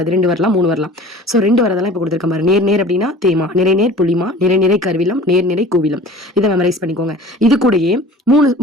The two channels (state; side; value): normal; both; correlation 0.43